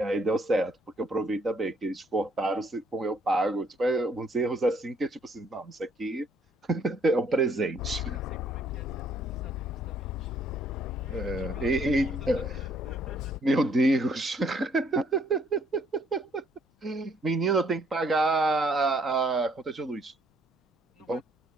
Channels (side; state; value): both; normal; correlation 0.65